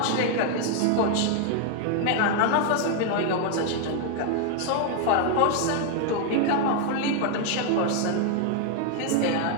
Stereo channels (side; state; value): both; different; correlation 0.00